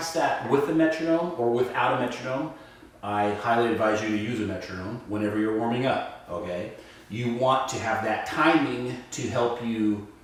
that with a metronome or without a metronome. I highly advise you to use a metronome whenever you're warming up, okay? You want to have that timing to help you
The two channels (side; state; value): both; identical; correlation 1.00